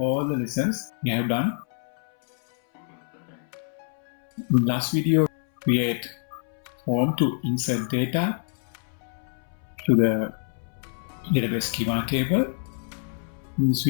the lessons we have done. In last video, create form to insert data to the database schema table. In this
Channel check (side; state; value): right; silent; 61 dB below the other